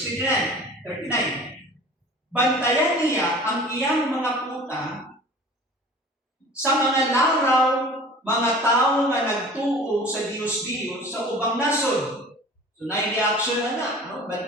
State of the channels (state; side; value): normal; both; correlation 0.43